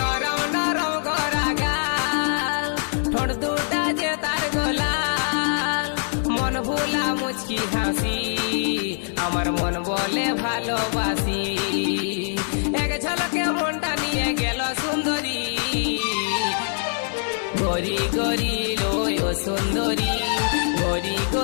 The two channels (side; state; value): right; silent; digital silence